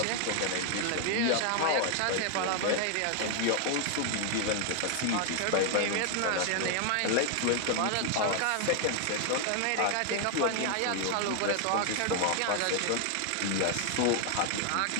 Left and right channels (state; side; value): different; both; correlation 0.00